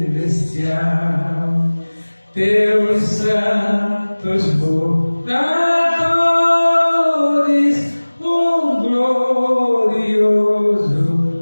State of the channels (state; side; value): inverted; both; correlation -1.00